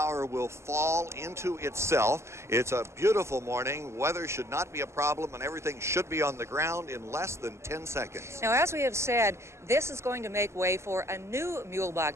will fall into itself. It's a beautiful morning. Weather should not be a problem, and everything should be on the ground in less than 10 seconds. Now, as we have said, this is going to make way for a new Muehlebach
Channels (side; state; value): left; late; 0.13 ms